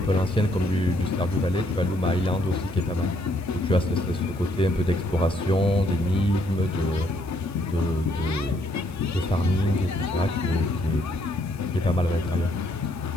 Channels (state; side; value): noise; left; hiss, 26 dB below the sound